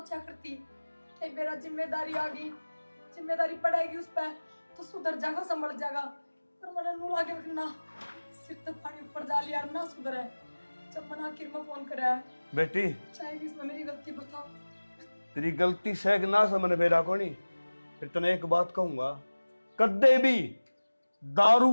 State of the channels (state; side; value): inverted; both; correlation -1.00